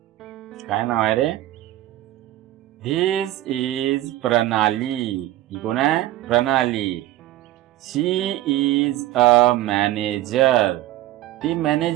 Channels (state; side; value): quieter; left; 15.0 dB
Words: काय नाव आहे रे? धिस इज प्रणाली. ही कोण आहे? प्रणाली. शी इज अ मॅनेजर. ती